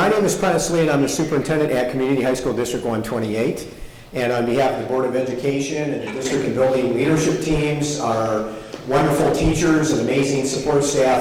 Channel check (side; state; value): both; identical; correlation 1.00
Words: name is Prentice Lee, and I'm the superintendent at Community High School District 128. And on behalf of the Board of Education and the district and building leadership teams, our wonderful teachers and amazing support